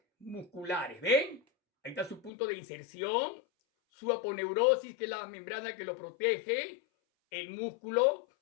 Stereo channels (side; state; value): right; drops out; at 2.3 s